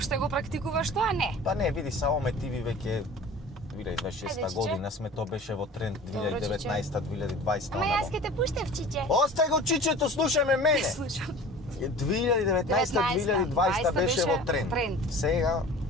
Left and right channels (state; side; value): normal; both; correlation 0.41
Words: го практикуваш тоа? Не. Па не, види, само ме тиви веќе 2026 Ајде, чиче. година сме, тоа беше во тренд Добро, 2019-2020. Ама јас ќе те пуштев, чиче. Остај го чичето, слушаме мене. Слушам. 2019-2020 беше во тренд. Сега